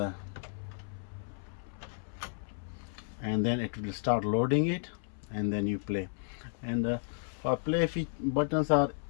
and then it will start loading it, and then you play. And for play buttons are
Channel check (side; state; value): right; silent; 56 dB below the other